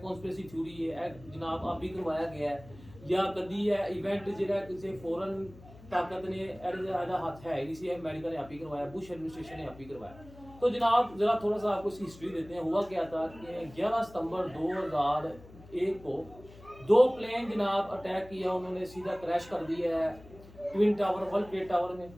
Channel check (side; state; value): left; noise; hum, 20 dB below the sound